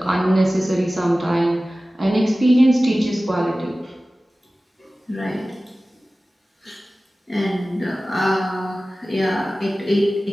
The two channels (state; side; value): normal; both; correlation 0.97